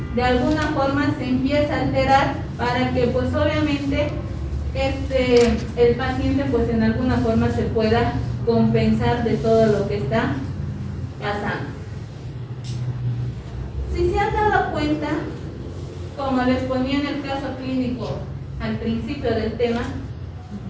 de alguna forma se empieza a alterar para que pues obviamente el paciente pues en alguna forma se pueda compensar de todo lo que está pasando. Si se han dado cuenta, como les ponía en el caso clínico al principio del tema,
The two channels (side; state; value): both; identical; correlation 1.00